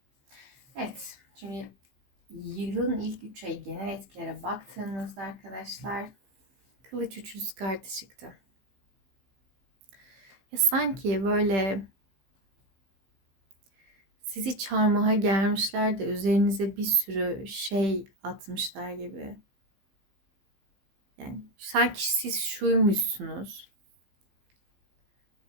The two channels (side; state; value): left; late; 15 ms